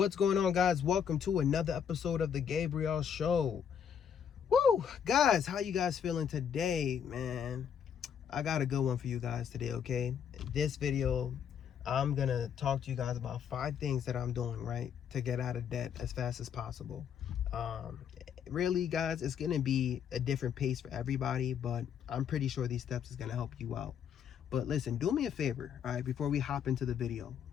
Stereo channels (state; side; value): quieter; right; 8.0 dB